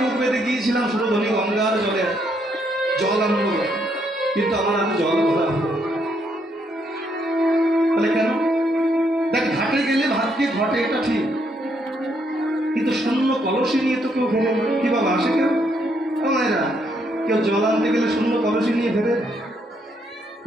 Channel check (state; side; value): normal; both; correlation 0.74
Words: বুক বেঁধে গিয়েছিলাম সুরধনী গঙ্গার জলে জল আনবো, কিন্তু আমার আর জল ভরা হলো। তাহলে কেন? দেখ, ঘাটে গেলে ভাগ্যে ঘটে, এটা ঠিক, কিন্তু শূন্য কলসি নিয়ে তো কেউ ফেরে না। কি বাবা আসে কেন? মায়েরা কেউ জল আনতে গেলে শূন্য কলসি নিয়ে ফেরে,